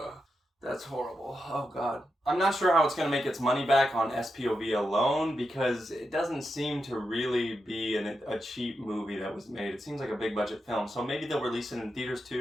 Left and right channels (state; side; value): normal; both; correlation 0.87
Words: That's horrible. Oh, God. I'm not sure how it's going to make its money back on SPOV alone because it doesn't seem to really be a cheap movie that was made. It seems like a big budget film. So maybe they'll release it in theaters